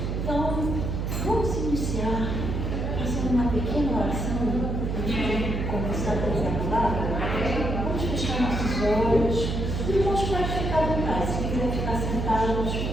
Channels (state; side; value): noise; right; hum, 1 dB below the sound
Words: Então, vamos iniciar fazendo uma pequena oração antes de começar a trazer a palavra. Vamos fechar nossos olhos. Os irmãos podem ficar à vontade. Se quiser ficar sentados,